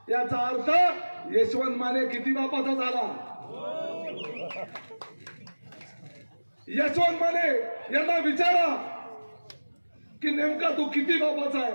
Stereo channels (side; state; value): both; inverted; correlation -1.00